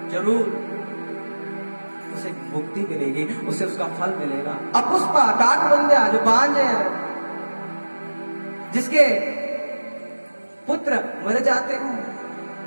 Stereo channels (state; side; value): inverted; both; correlation -1.00